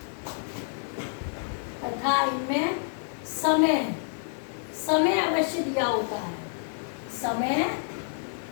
तथा इनमें समय, समय अवश्य दिया होता है। समय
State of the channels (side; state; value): right; silent; digital silence